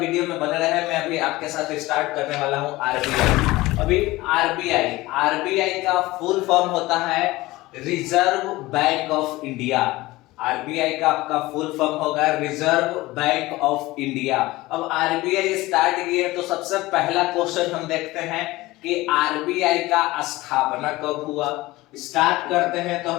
में बने रहे। मैं अभी आपके साथ स्टार्ट करने वाला हूं आरबीआई। अभी आरबीआई का फुल फॉर्म होता है reserve bank of India. RBI का आपका फुल फॉर्म होगा रिजर्व बैंक ऑफ इंडिया। अब आरबीआई स्टार्ट की है तो सबसे पहला क्वेश्चन हम देखते हैं कि आरबीआई का स्थापना कब हुआ। स्टार्ट करते हैं तो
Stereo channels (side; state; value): right; quieter; 19.2 dB